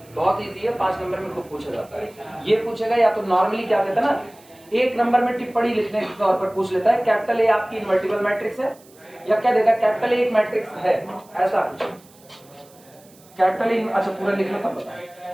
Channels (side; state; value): right; noise; hiss, 27 dB below the sound